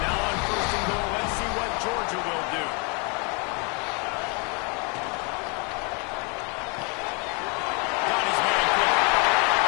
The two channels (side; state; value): right; quieter; 33.6 dB